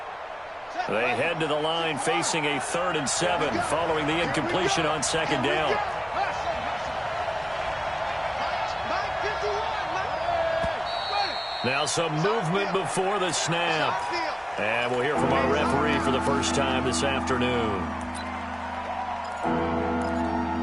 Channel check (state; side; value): identical; both; correlation 1.00